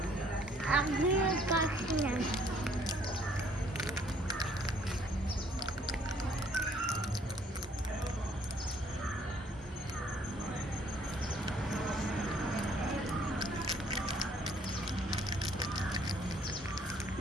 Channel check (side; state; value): both; normal; correlation 0.62